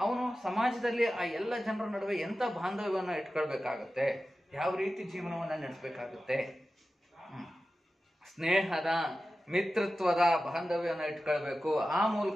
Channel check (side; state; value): both; normal; correlation 0.94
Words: ಅವನು ಸಮಾಜದಲ್ಲಿ ಆ ಎಲ್ಲ ಜನರ ನಡುವೆ ಎಂತ ಬಾಂಧವ್ಯವನ್ನು ಇಟ್ಕೊಳ್ಬೇಕಾಗತ್ತೆ, ಯಾವ ರೀತಿ ಜೀವನವನ್ನ ನಡೆಸಬೇಕಾಗುತ್ತೆ? ಸ್ನೇಹದ, ಮಿತ್ರತ್ವದ ಬಾಂಧವ್ಯವನ್ನು ಇಟ್ಕೊಳ್ಬೇಕು. ಆ